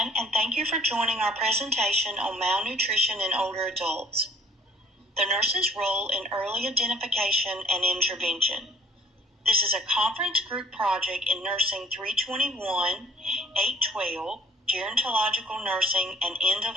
and thank you for joining our presentation on malnutrition in older adults. The nurse's role in early identification and intervention. This is a conference group project in Nursing 321, 812, Gerontological Nursing and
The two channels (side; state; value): both; normal; correlation 0.55